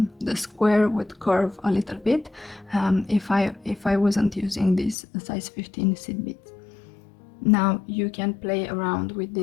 square would curve a little bit if I wasn't using this size 15 seed beads. Now you can play around with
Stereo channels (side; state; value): right; drops out; at 5.0 s